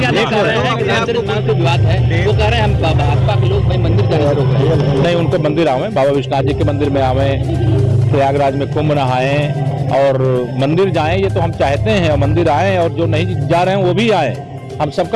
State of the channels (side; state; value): both; identical; correlation 1.00